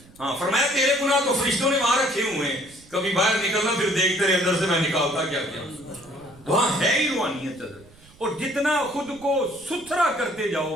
ہاں فرمایا تیرے گناہ تو فرشتوں نے وہاں رکھے ہوئے ہیں، کبھی باہر نکلنا پھر دیکھتے رہے اندر سے میں نکالتا کیا کیا. وہاں ہے ہی روحانیت حضرت. اور جتنا خود کو ستھرا کرتے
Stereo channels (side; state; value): right; noise; rumble, 25 dB below the sound